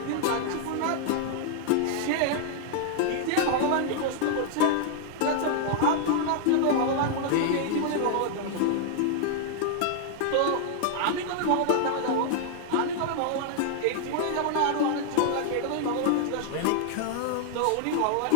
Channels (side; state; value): both; different; correlation 0.00